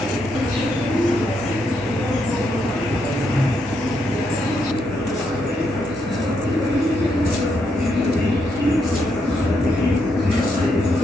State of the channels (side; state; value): both; normal; correlation 0.79